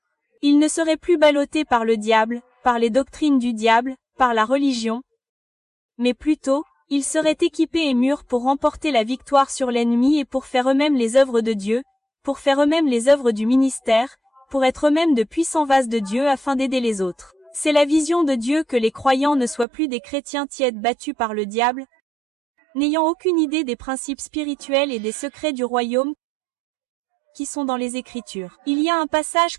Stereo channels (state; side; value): drops out; left; at 19.7 s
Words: Ils ne seraient plus ballottés par le diable, par les doctrines du diable, par la religion, mais plutôt, ils seraient équipés et mûrs pour remporter la victoire sur l'ennemi et pour faire eux-mêmes les œuvres de Dieu, pour faire eux-mêmes les œuvres du ministère, pour être eux-mêmes de puissants vases de Dieu afin d'aider les autres. C'est la vision de Dieu que les croyants ne soient plus des chrétiens tièdes battus par le diable, n'ayant aucune idée des principes spirituels et des secrets du royaume qui sont dans les Écritures. Il y a un passage